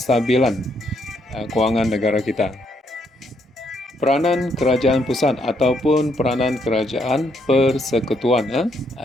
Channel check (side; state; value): both; normal; correlation 0.74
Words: kewangan negara kita. Peranan kerajaan pusat ataupun peranan kerajaan persekutuan